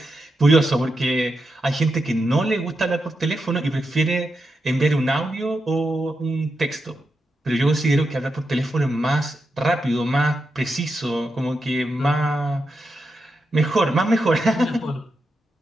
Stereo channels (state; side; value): normal; both; correlation 0.86